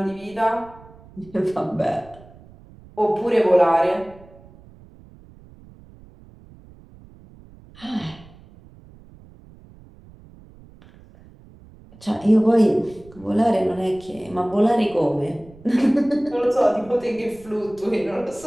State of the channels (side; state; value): right; noise; rumble, 23 dB below the sound